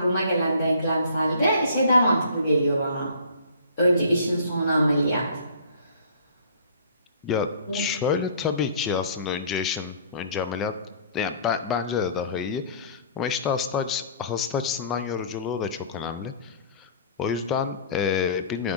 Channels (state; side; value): inverted; both; correlation -0.48